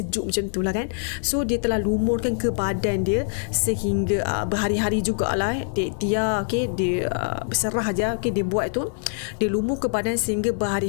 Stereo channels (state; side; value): silent; right; digital silence